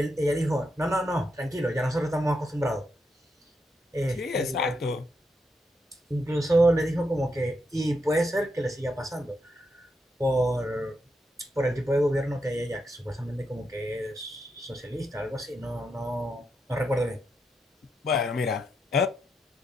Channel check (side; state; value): both; normal; correlation 0.83